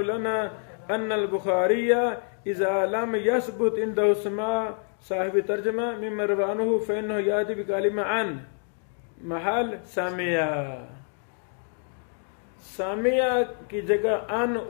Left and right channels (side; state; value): right; silent; 55 dB below the other